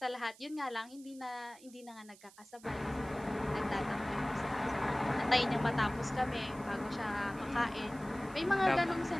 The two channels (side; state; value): right; noise; hiss, 23 dB below the sound